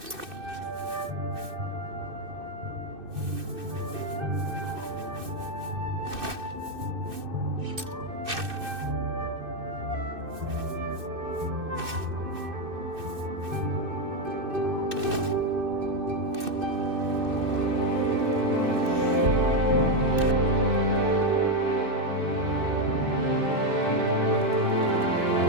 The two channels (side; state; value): left; late; 2.6 ms